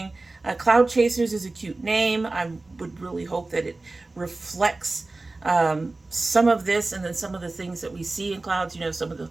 Cloud Chasers is a cute name. I would really hope that it reflects some of this and then some of the things that we see in clouds, you know, some of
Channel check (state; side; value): quieter; left; 3.2 dB